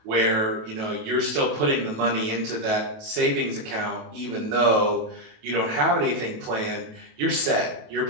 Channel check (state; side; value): late; left; 27 ms